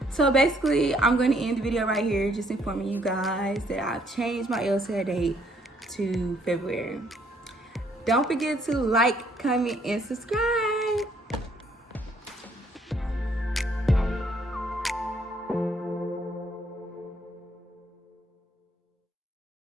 So basically, I'm going to end the video right here, just informing you guys that I've changed my LSAT date to February. Don't forget to like, comment, and subscribe.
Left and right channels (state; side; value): normal; both; correlation 0.66